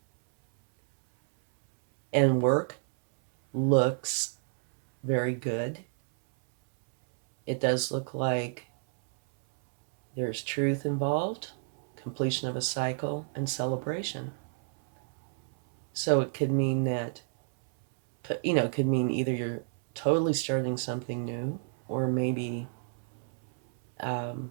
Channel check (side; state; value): left; silent; 58 dB below the other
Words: And work looks very good. It does look like there's truth involved, completion of a cycle, and celebration. So it could mean that, it could mean either you're totally starting something new, or maybe